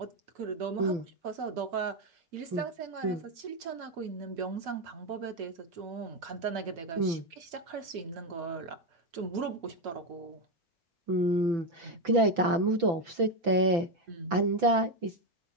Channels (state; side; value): late; left; 5.9 ms